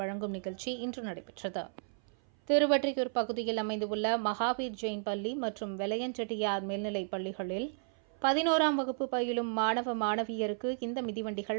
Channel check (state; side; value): silent; left; 56 dB below the other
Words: நிகழ்ச்சி இன்று நடைபெற்றது. திருவொற்றியூர் பகுதியில் அமைந்துள்ள மகாவீர் ஜெயின் பள்ளி மற்றும் வெளையஞ்செட்டியார் மேல்நிலைப் பள்ளிகளில் 11ஆம் வகுப்பு பயிலும் மாணவ மாணவியருக்கு இந்த